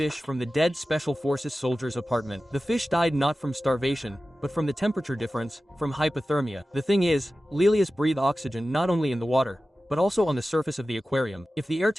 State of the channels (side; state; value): both; normal; correlation 0.95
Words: from the dead Special Forces soldier's apartment. The fish died not from starvation, but from the temperature difference, from hypothermia. The thing is, Lelius breathe oxygen not only in the water, but also on the surface of the aquarium. If the air